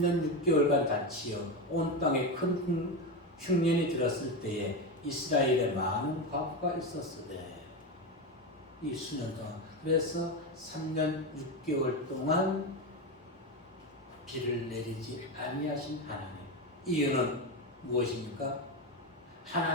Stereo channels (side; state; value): both; normal; correlation 0.15